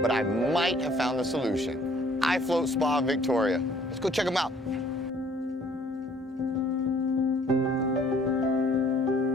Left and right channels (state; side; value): normal; both; correlation 0.58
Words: I might have found the solution. iFloat Spa Victoria. Let's go check them out.